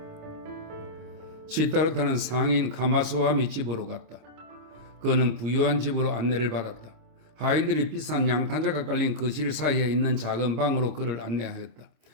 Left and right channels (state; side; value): late; left; 26 ms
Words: 시타르타는 상인 카마스와미 집으로 갔다. 그는 부유한 집으로 안내를 받았다. 하인들이 비싼 양탄자가 깔린 거실 사이에 있는 작은 방으로 그를 안내하였다.